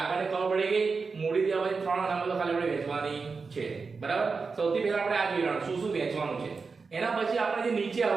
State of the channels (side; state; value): left; quieter; 4.7 dB